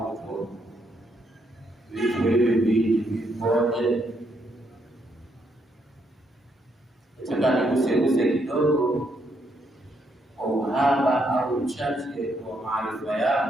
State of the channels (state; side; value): normal; both; correlation 0.75